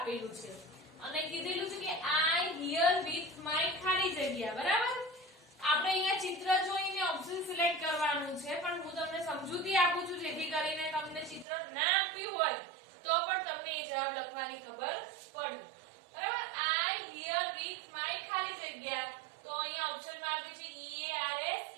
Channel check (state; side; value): drops out; left; at 11.5 s